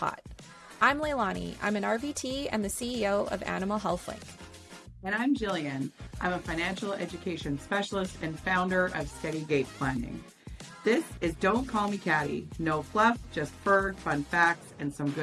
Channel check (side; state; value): both; identical; correlation 1.00